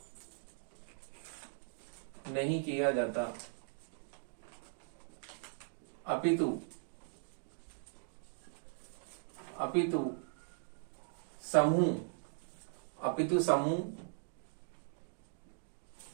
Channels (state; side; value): silent; left; digital silence